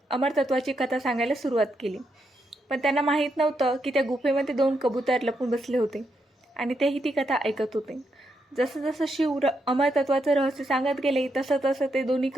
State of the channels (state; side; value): normal; both; correlation 0.81